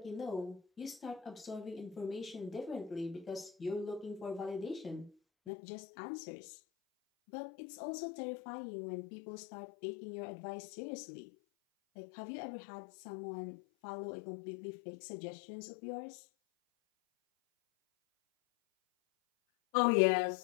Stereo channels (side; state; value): right; drops out; at 5.5 s